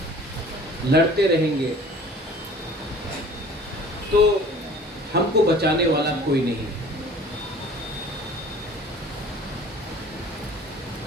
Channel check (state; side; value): normal; both; correlation 0.47